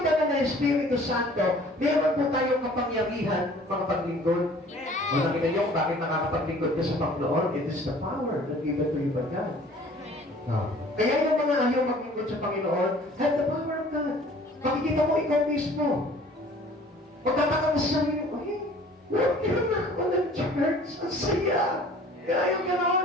banal na Espiritu Santo, meron po tayong kapangyarihan mga paglingkod. O nakita niyo kung bakit nakakapaglingkod ka sa Panginoon? It is the power that given to you by God. Kaya yung mga ayaw maglingkod sa Panginoon, have the power of God. Makikita mo ikaw mismo. Magtataka mo sa sarili mo, huwag ka na ako ng church. Ang saya. Kaya yung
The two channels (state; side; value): normal; both; correlation 0.51